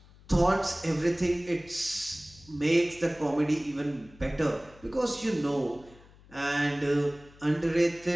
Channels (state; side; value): noise; left; hum, 24 dB below the sound